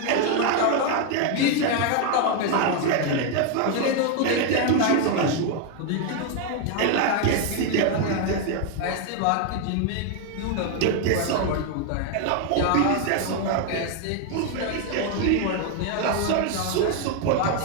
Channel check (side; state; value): both; different; correlation 0.01